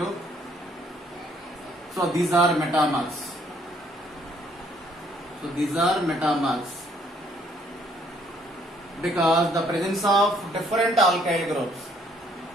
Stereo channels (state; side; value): normal; both; correlation 0.65